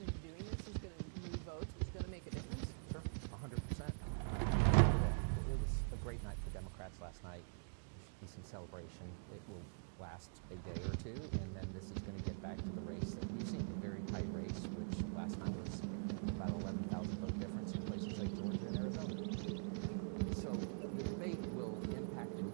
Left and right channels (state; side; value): silent; left; digital silence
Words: and doing this is going to move votes, is going to make a difference? Sure, 100%. It was a great night for Democrats last night. Decent celebration. It will last a day or two, and then this is going to get back to the race that we've seen, a very tight race, which last time was about 11,000 vote difference in places like Georgia and Arizona. So the debate will impact the